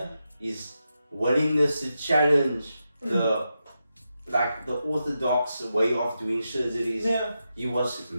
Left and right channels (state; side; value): inverted; both; correlation -0.88